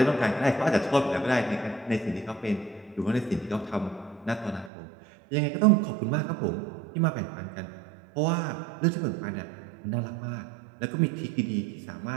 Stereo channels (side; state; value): left; drops out; at 4.7 s